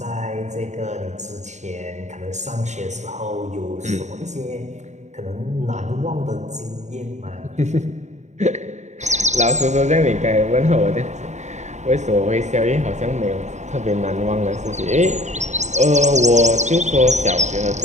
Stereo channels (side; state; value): left; late; 0.34 ms